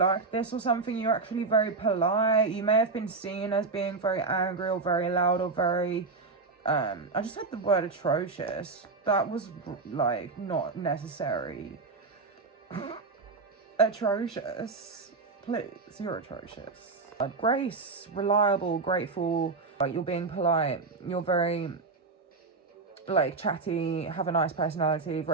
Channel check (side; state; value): left; quieter; 4.1 dB